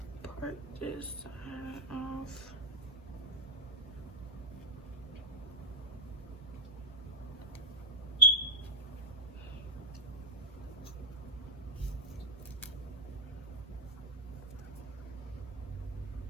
part this side off.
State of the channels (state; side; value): normal; both; correlation -0.02